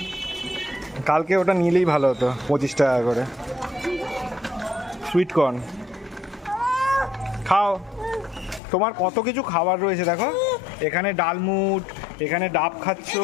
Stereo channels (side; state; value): right; drops out; at 8.6 s